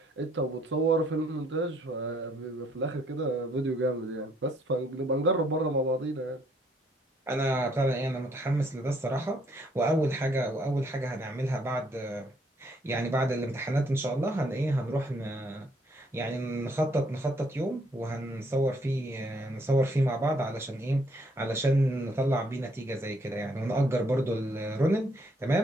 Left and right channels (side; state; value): both; normal; correlation 0.68